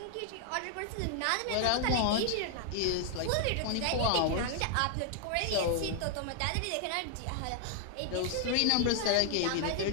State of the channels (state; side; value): different; both; correlation 0.00